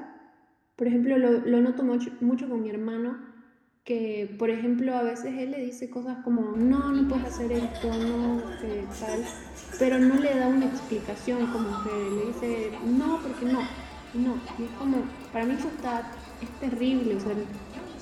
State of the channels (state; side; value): identical; both; correlation 1.00